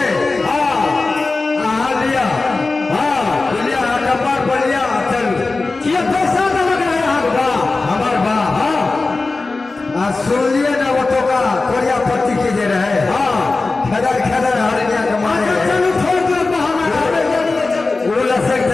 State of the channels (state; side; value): quieter; right; 3.6 dB